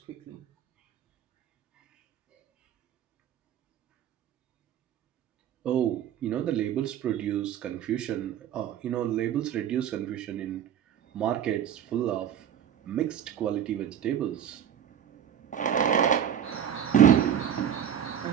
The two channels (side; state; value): left; quieter; 9.5 dB